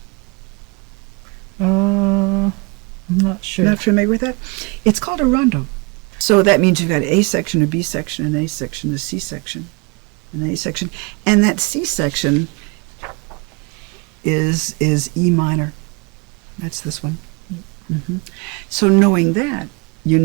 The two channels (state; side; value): quieter; left; 29.3 dB